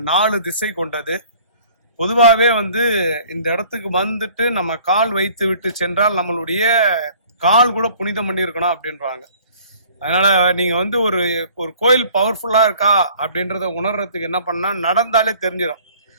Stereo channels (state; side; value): inverted; both; correlation -0.53